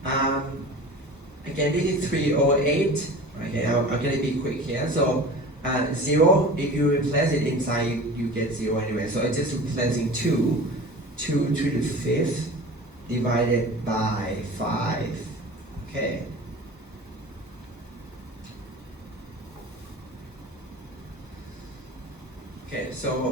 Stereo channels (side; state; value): both; normal; correlation 0.37